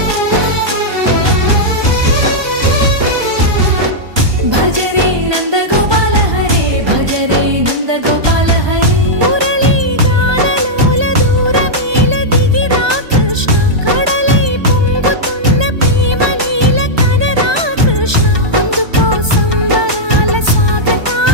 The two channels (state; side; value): late; left; 1.2 ms